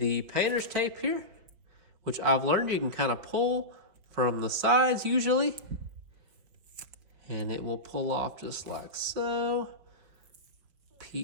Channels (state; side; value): late; left; 5.2 ms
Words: painter's tape here, which I've learned you can kind of pull from the sides usually, and it will pull off just like so.